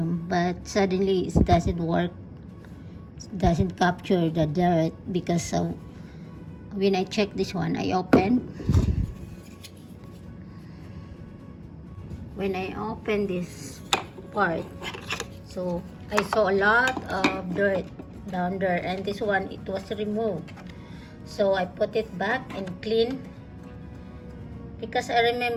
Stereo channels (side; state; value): both; identical; correlation 1.00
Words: but suddenly it doesn't work. It doesn't capture the dirt because when I check this one, I open. When I open this part, so I saw a lot of dirt down there, and this one, it was removed. So I put it back and clean, because I